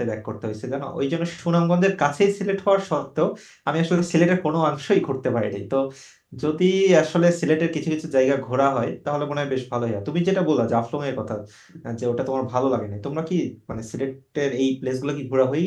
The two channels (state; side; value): identical; both; correlation 1.00